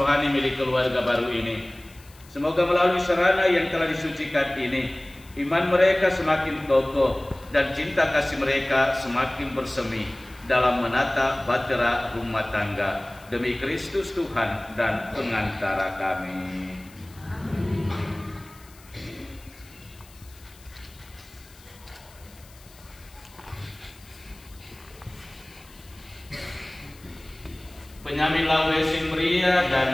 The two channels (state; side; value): noise; left; hiss, 24 dB below the sound